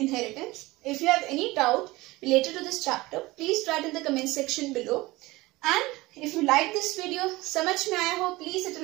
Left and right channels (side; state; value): left; quieter; 20.4 dB